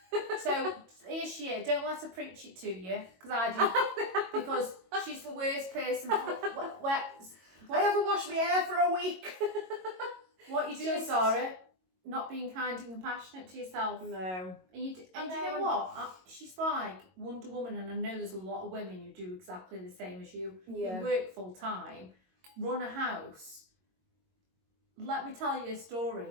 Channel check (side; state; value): left; late; 22 ms